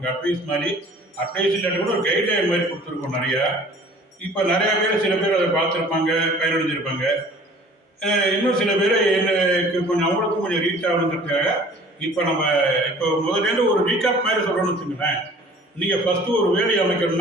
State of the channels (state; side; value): normal; both; correlation 0.49